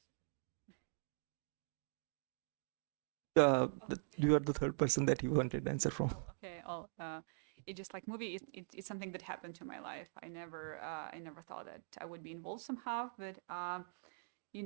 You are the third person that you wanted answer from. Okay. It just like movie. It's something that happened to my life. I never thought that I would be involved somehow, but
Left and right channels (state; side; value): silent; left; digital silence